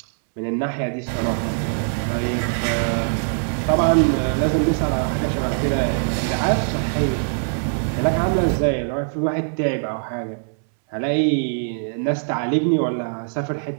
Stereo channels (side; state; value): left; silent; 64 dB below the other